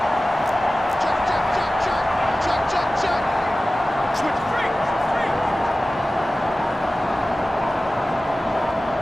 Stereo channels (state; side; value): normal; both; correlation 0.96